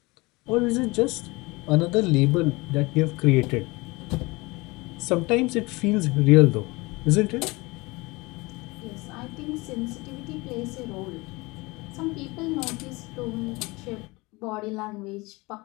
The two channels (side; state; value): right; quieter; 24.0 dB